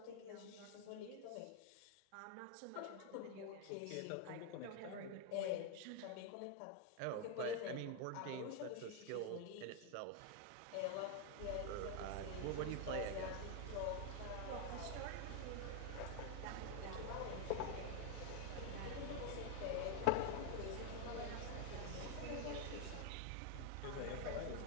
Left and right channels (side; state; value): both; different; correlation 0.01